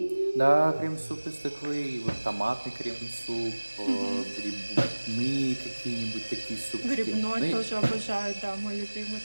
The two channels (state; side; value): inverted; both; correlation -1.00